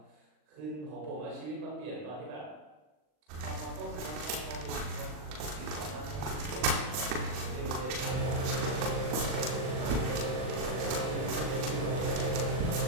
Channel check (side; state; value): left; late; 39 ms